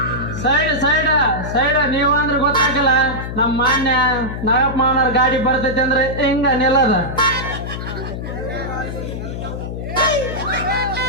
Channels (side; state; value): left; noise; hum, 6 dB below the sound